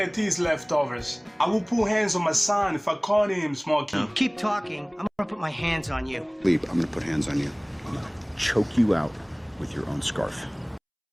his leftovers. I will put hands on my son if I caught him smoking. Keep talking. I'm gonna put my hands on you. Leave. I'm gonna put hands on you. I'm gonna choke you out with your own scarf.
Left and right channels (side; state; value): both; identical; correlation 1.00